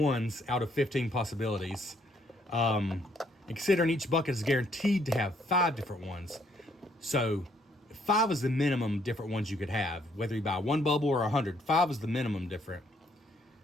out of 15 possibilities. And considering each bucket is guaranteed to have 5 different ones. So 5 is the minimum different ones you could have. Whether you buy 1 bubble or 100, 5 is the minimum different.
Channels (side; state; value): both; normal; correlation 0.68